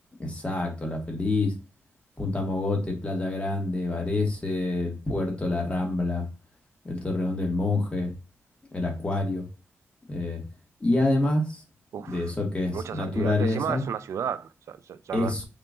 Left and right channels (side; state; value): both; normal; correlation 0.79